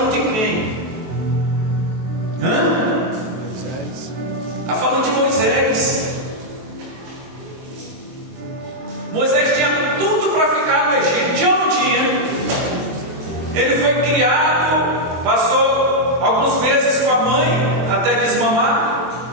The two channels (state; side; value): late; left; 23 ms